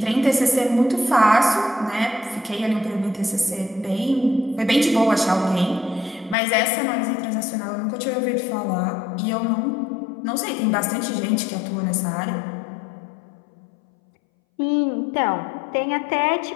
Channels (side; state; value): right; drops out; at 6.4 s